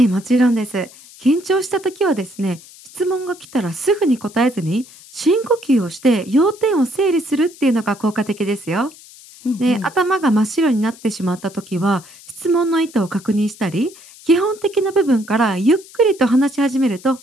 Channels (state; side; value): noise; left; hiss, 21 dB below the sound